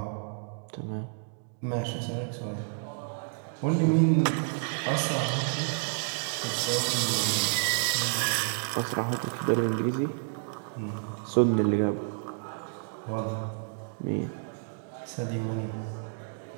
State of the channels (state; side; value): silent; left; digital silence